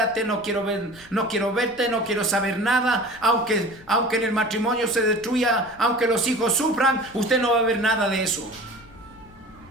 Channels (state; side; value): noise; left; rumble, 25 dB below the sound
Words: no quiero verte, no quiero saber nada. Aunque en el matrimonio se destruya, aunque los hijos sufran, usted no va a ver nada de eso.